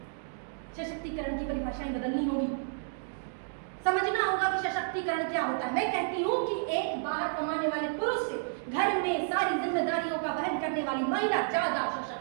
सशक्तिकरण की परिभाषाएं बदलनी होगी, समझना होगा कि सशक्तिकरण क्या होता है। मैं कहती हूँ कि एक बाहर कमाने वाले पुरुष से घर में सारी जिम्मेदारियों का वहन करने वाली महिला ज्यादा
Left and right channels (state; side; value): silent; left; digital silence